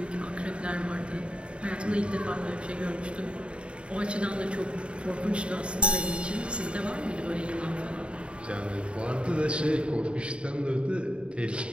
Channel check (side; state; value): left; late; 0.057 ms